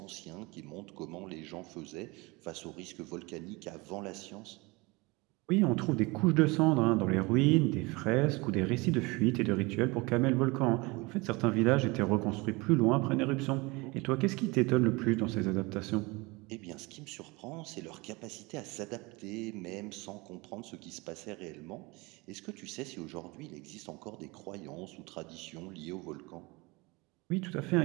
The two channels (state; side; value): quieter; left; 25.0 dB